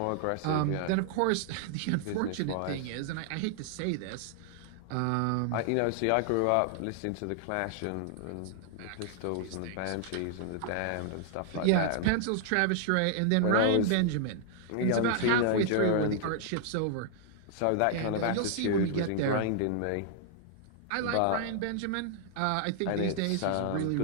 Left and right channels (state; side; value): different; both; correlation -0.01